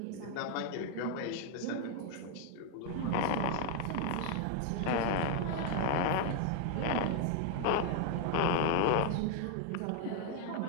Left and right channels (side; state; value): both; different; correlation 0.00